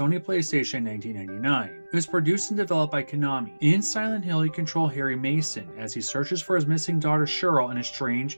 PlayStation in 1999. It was produced and developed by Konami. In Silent Hill, you control Harry Mason as he searches for his missing daughter Cheryl in a strange,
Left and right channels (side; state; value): both; inverted; correlation -1.00